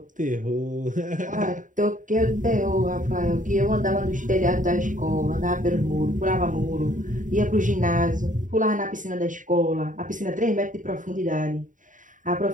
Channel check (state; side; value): late; left; 0.38 ms